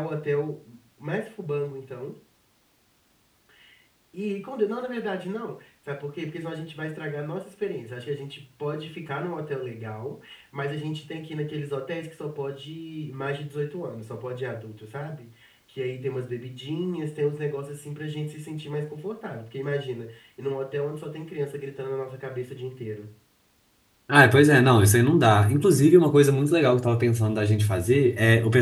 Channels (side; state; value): both; identical; correlation 1.00